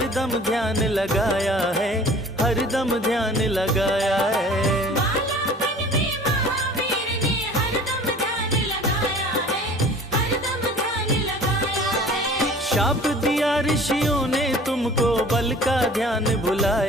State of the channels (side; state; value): both; normal; correlation 0.46